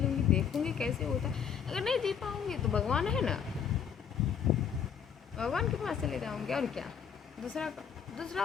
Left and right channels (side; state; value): right; quieter; 7.6 dB